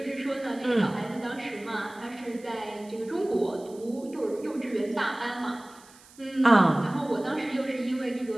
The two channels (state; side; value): noise; right; hiss, 24 dB below the sound